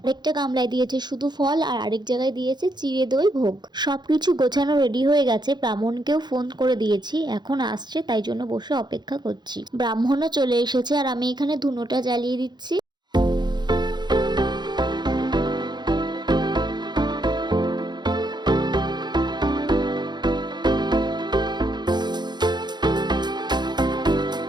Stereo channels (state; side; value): late; left; 0.21 ms